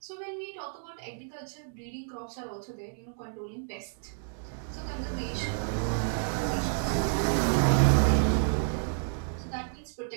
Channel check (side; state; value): left; silent; digital silence